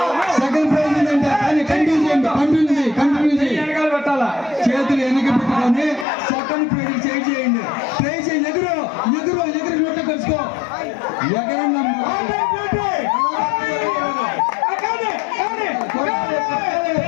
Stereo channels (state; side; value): drops out; right; at 6.1 s